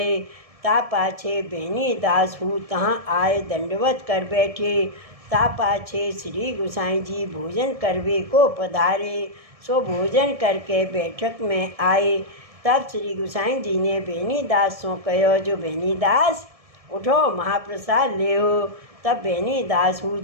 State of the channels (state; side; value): late; left; 1.7 ms